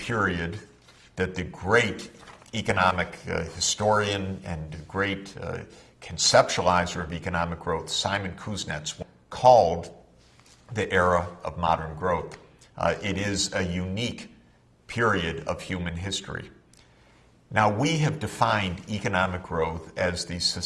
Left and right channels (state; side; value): identical; both; correlation 1.00